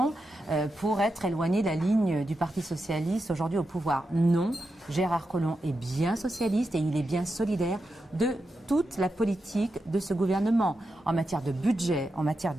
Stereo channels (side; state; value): both; normal; correlation 0.88